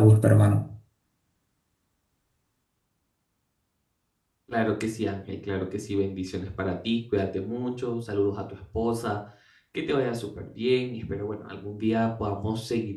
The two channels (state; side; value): identical; both; correlation 1.00